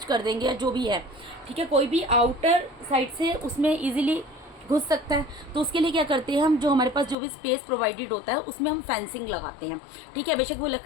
कर देंगे या जो भी है। ठीक है, कोई भी आउटर साइड से उसमें ईजिली घुस सकता है, तो उसके लिए क्या करते हैं हम, जो हमारे पास जो भी स्पेस प्रोवाइडेड होता है उसमें हम फेंसिंग लगाते हैं। ठीक है, बेशक वो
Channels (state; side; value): drops out; right; at 7.2 s